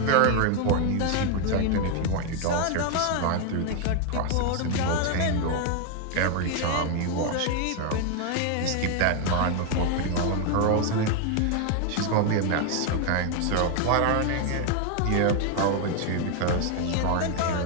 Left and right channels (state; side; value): different; both; correlation 0.01